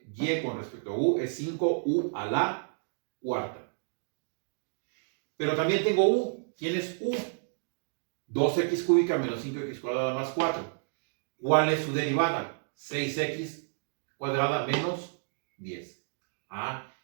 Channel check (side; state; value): left; silent; digital silence